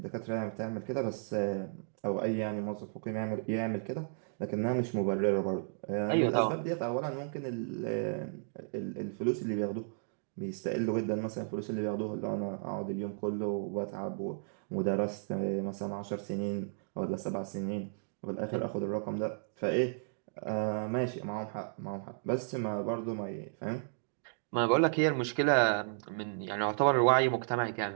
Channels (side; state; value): left; silent; digital silence